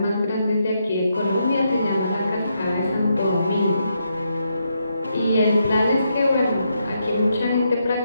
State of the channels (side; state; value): both; inverted; correlation -0.80